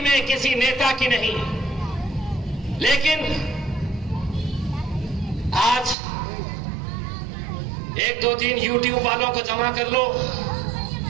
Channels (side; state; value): left; drops out; at 6.0 s